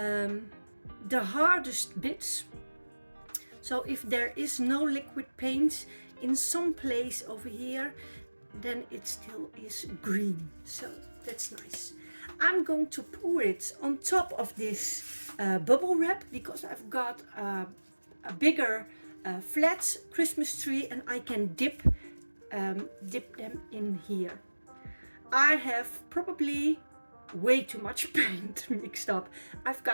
hardest bits. So if there is no liquid paint in some place over here, then it still is green. So that's nice. I'm going to pour it on top of this bubble wrap because I've got a bigger flat Christmas tree and I can dip them in here. I have probably way too much paint mixed up. I've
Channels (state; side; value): inverted; both; correlation -1.00